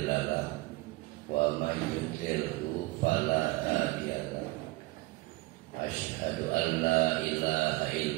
lahu wa may yudlilhu fala hadiya lahu. Asyhadu an la ilaha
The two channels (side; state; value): left; quieter; 21.4 dB